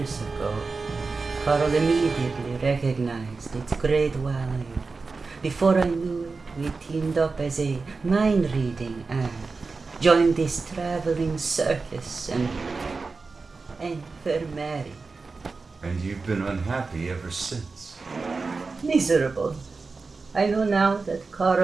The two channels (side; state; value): left; quieter; 4.2 dB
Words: ago. Carl immediately recognized its great value. Before I knew it, we teamed up as a mind-reading act, joined this traveling circus, and were married. And you've been unhappy ever since. Miserable. I know now that